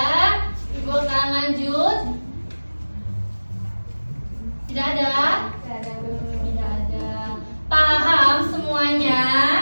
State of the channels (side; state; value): both; inverted; correlation -1.00